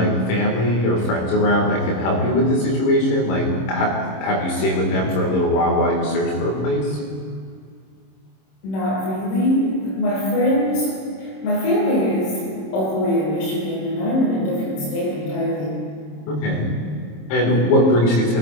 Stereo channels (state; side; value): late; right; 26 ms